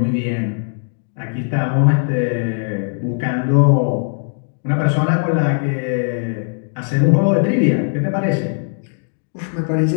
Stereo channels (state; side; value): silent; right; digital silence